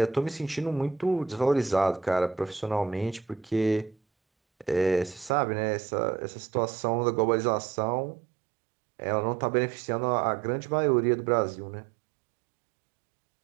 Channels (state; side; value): drops out; left; at 5.3 s